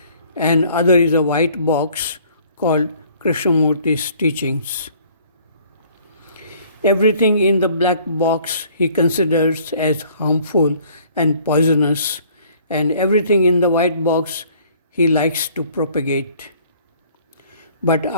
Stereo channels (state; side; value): inverted; both; correlation -0.57